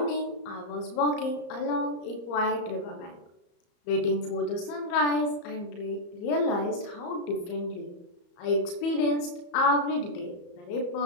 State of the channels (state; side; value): late; right; 34 ms